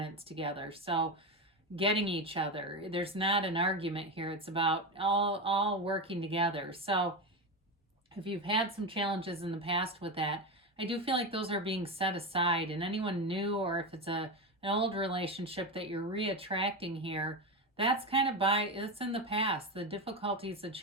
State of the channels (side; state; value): both; normal; correlation 0.16